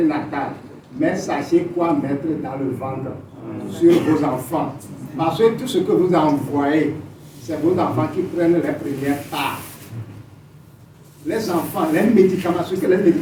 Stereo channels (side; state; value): both; identical; correlation 1.00